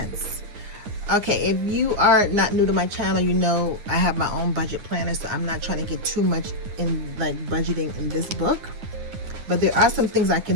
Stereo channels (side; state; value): left; late; 9.5 ms